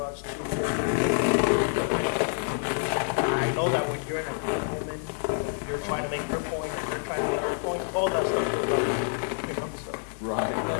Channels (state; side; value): silent; right; digital silence